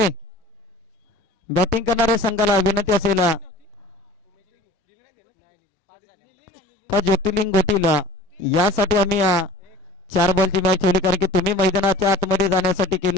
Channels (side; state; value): both; normal; correlation 0.43